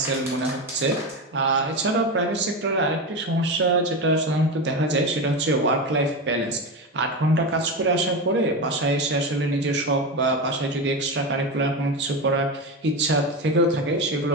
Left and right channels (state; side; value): normal; both; correlation 0.18